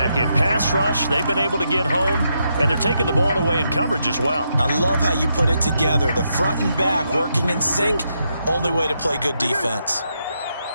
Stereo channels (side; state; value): both; inverted; correlation -0.81